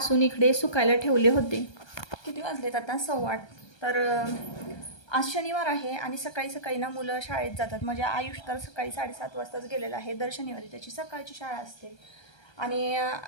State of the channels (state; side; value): late; right; 1.3 ms